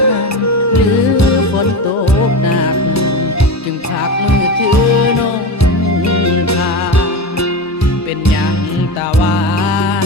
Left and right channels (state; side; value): normal; both; correlation 0.22